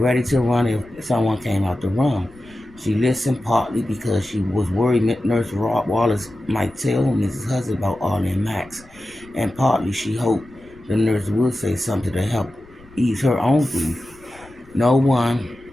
to run if someone came out the room. She listened partly because she was worried Nurse Wallace might tell Mrs. Hudson about Arlie and Max, and partly she hoped the nurse would say something to help ease her own grief. No one,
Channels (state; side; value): noise; left; rumble, 25 dB below the sound